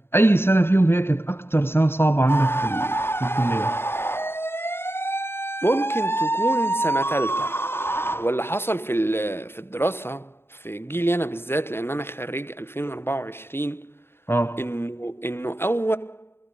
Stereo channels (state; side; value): late; right; 0.11 ms